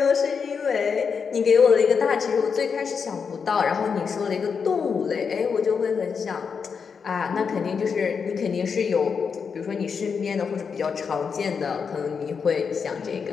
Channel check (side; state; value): right; quieter; 6.0 dB